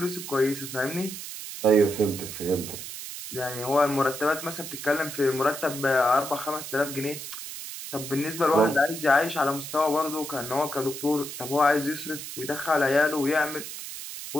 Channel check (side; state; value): right; noise; hiss, 9 dB below the sound